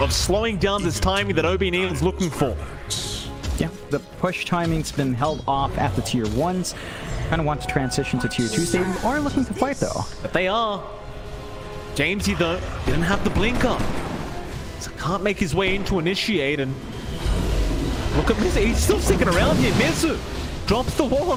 slowing down this timing that ob.neon is looking for. Yeah, the push timing's been held off at the tier 1s. Kind of want to transition to tier 2s. They are looking to fight though. But they are. Jamesy though didn't have the blink up, so can't make his way in to initiate. And look at Mizu, he's still sticking around here. Mizu drops the wall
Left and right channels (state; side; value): identical; both; correlation 1.00